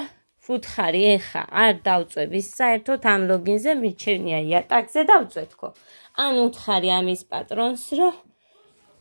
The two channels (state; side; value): inverted; both; correlation -1.00